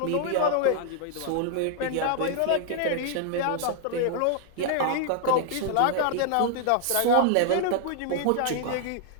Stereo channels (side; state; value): both; different; correlation -0.01